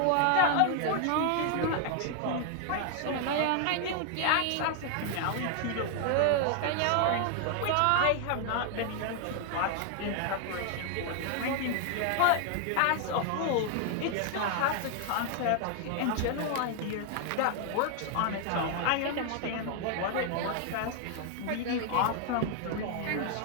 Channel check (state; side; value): different; both; correlation 0.00